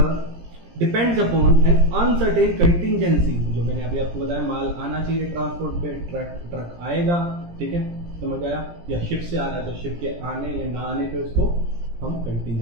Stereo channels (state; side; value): late; left; 17 ms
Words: depends upon N uncertain contingency. जो मैंने अभी आपको बताया, माल आना चाहिए ट्रांसपोर्ट पे, ट्रक आएगा, ठीक है, समझ आया, या शिप से आ रहा है तो शिप के आने या ना आने पे उसको हम